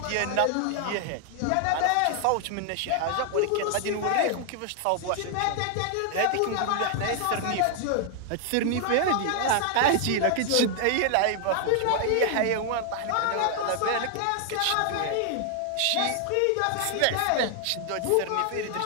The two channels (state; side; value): different; both; correlation 0.00